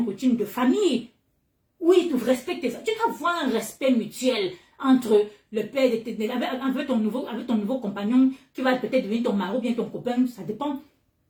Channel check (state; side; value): identical; both; correlation 1.00